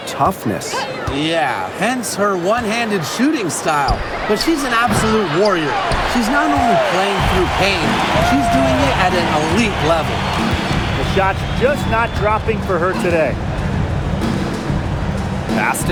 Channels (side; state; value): both; identical; correlation 1.00